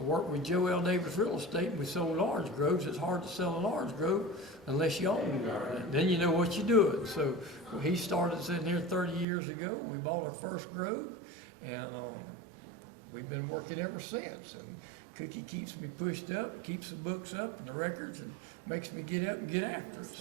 worked with Joe L. Davis Real Estate, and we sold orange groves. It's hard to sell an orange grove unless you own one. And then you know what you're doing. So he started sitting here 30 years ago. We bought our first grove, and we've been working ever since. And Cookie keeps me pushed up, keeps the books up and the records, and makes me get up and get after it.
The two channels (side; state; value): left; drops out; at 9.2 s